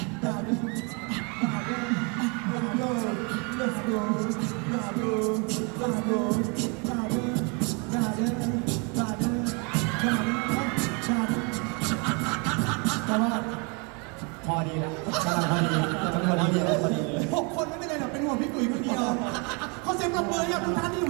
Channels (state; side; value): quieter; left; 32.9 dB